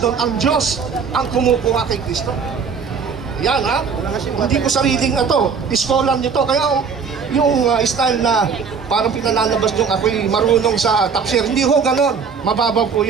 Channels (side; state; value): left; quieter; 5.9 dB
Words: ang Diyos ang kumukuha kay Kristo. Yan hindi ko sariling na to, scholar nyo to. Kaya yung style na parang pinalalabas yung ako'y marunong sa tafsir, hindi ho ganon, mababaw po